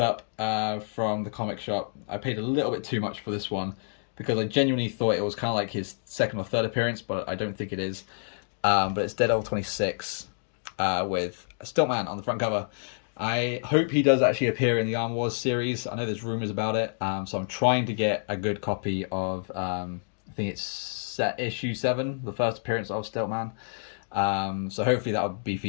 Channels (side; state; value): right; silent; digital silence